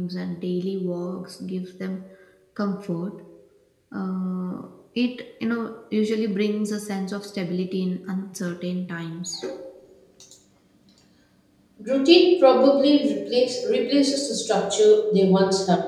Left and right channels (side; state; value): both; identical; correlation 1.00